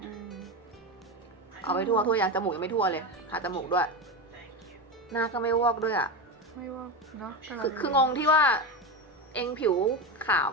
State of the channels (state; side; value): normal; both; correlation 0.18